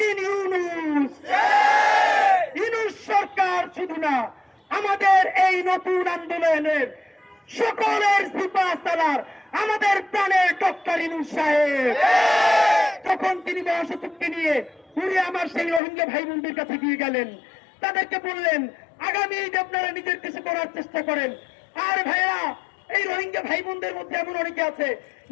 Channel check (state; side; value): drops out; right; at 15.8 s